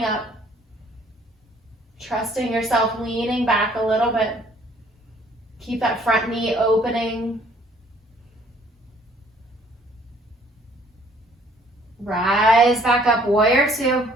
up. Trusting yourself, leaning back a little bit. Keep that front knee opening. Rise back up, warrior two.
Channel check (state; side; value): normal; both; correlation 0.60